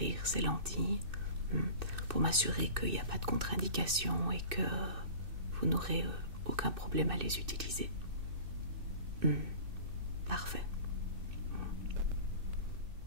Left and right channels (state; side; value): late; left; 2.6 ms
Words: ces lentilles pour m'assurer qu'il n'y a pas de contre-indication et que vous n'aurez aucun problème à les utiliser. Parfait.